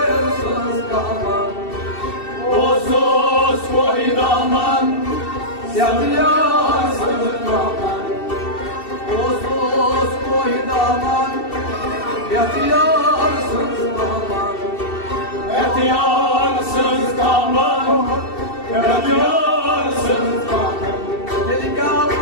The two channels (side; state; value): right; late; 2.7 ms